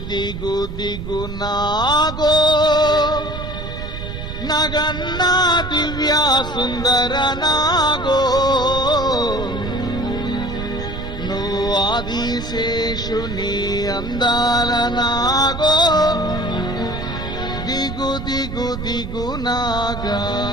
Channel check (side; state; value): right; noise; rumble, 7 dB below the sound